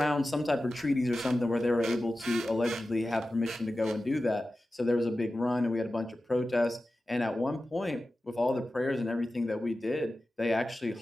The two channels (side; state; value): both; normal; correlation 0.94